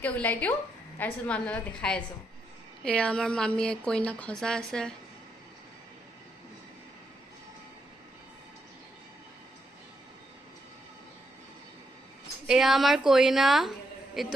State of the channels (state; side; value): normal; both; correlation 0.80